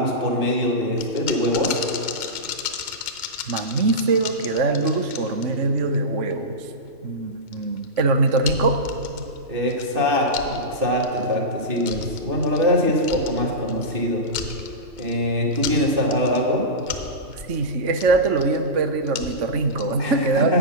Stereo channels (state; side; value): late; left; 2.2 ms